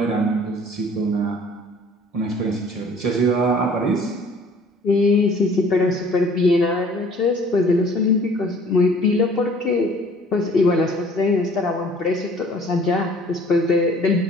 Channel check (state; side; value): normal; both; correlation 0.53